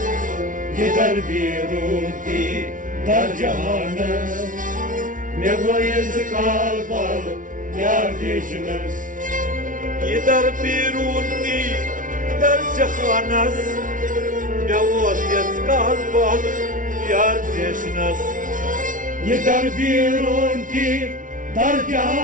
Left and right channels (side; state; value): left; late; 0.38 ms